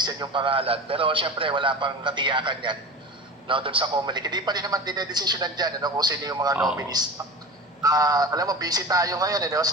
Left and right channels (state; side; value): normal; both; correlation 0.32